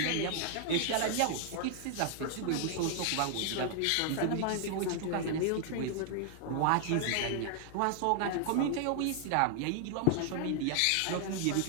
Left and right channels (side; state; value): both; different; correlation 0.00